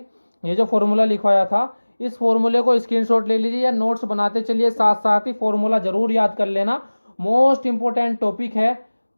ये जो फॉर्मूला लिखवाया था, इस फॉर्मूले को स्क्रीनशॉट ले लीजिए या नोट्स बनाते चलिए, साथ साथ ही फॉर्मूला जरूर याद कर लेना। मोस्ट इंपॉर्टेंट टॉपिक है।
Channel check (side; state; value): both; inverted; correlation -1.00